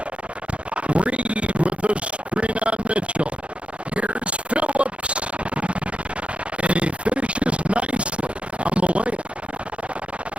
Reed with the screen on Mitchell. Here's Phillips. And he finishes nicely on the layup.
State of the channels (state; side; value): late; left; 0.060 ms